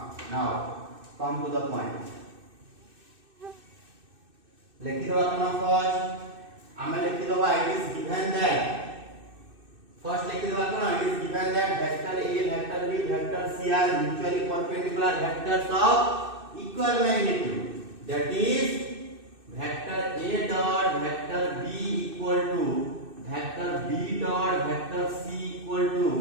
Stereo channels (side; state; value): left; late; 2.6 ms